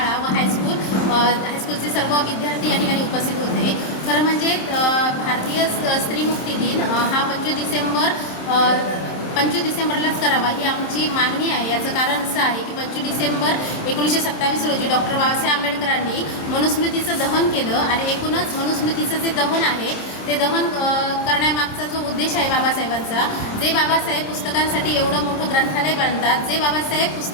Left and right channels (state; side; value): late; right; 27 ms